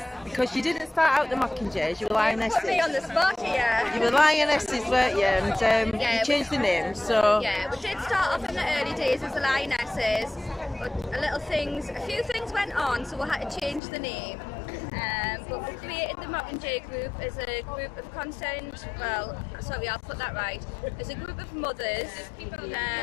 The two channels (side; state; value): right; drops out; at 13.8 s